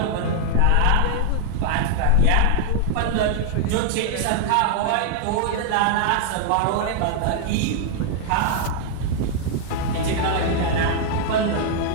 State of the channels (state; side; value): different; both; correlation 0.00